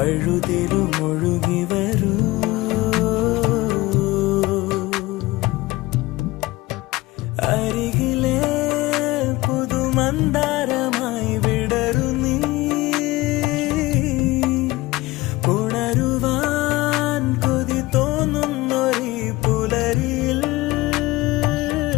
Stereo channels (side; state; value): right; quieter; 19.8 dB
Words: ഒഴുകി വരൂ. അരികിലെ പുതുമന്ദാരമായി വിടരു നീ, ഉണരുവാൻ കൊതി തോന്നുന്നൊരു പുലരിയിൽ.